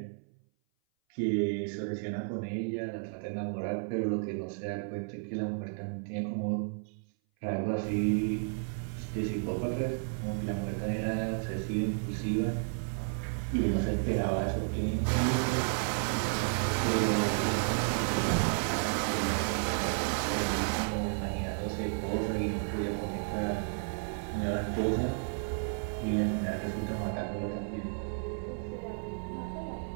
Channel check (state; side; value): silent; left; 56 dB below the other